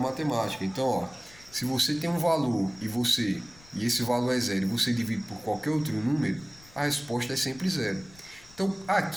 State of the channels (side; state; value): left; noise; rumble, 24 dB below the sound